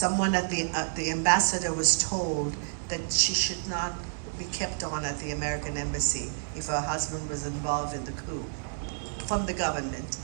at the ambassador was told that she should not be kept on at the American Embassy if her husband was involved in the coup. From the government,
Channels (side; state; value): left; silent; digital silence